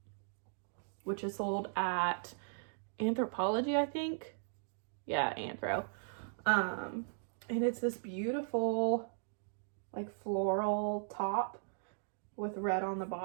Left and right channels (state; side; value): silent; left; digital silence